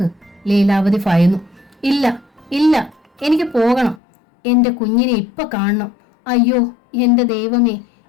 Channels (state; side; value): drops out; right; at 4.0 s